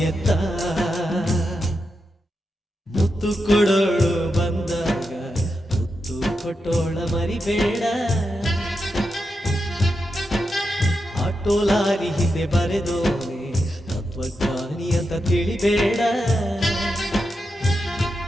ಎತ್ತ. ಮುತ್ತು ಕೊಡೋಳು ಬಂದಾಗ ತುತ್ತು ಕೊಟ್ಟೋಳ ಮರಿಬೇಡ. ಆಟೋ ಲಾರಿ ಹಿಂದೆ ಬರೆದೋನೆ ತತ್ವಜ್ಞಾನಿ ಅಂತ ತಿಳಿಬೇಡ.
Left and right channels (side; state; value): both; normal; correlation 0.87